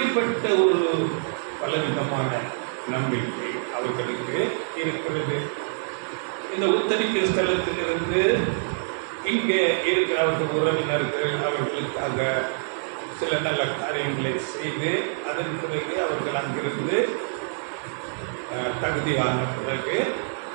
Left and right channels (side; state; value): left; silent; digital silence